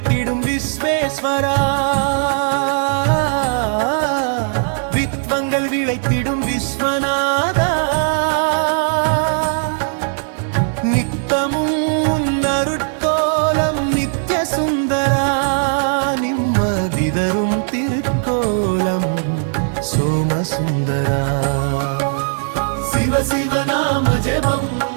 விஸ்வேஸ்வரா, வித்வங்கள் விளைத்திடும் விஸ்வநாதா. நித்தமும் அருட்கோலம் நித்ய சுந்தரா, நிம்மதிதரும் திருக்கோலம் சோமசுந்தரா. சிவ சிவ நாம ஜெபம்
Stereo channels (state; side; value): silent; left; digital silence